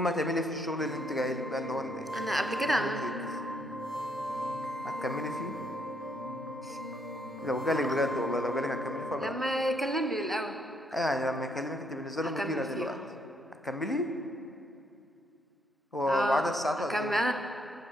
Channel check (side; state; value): both; normal; correlation 0.72